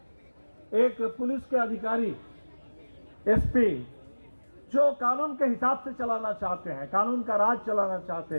एक पुलिस के अधिकारी, एसपी, जो कानून के हिसाब से चलाना चाहते हैं, कानून का राज चलाना चाहते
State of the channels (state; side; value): inverted; both; correlation -1.00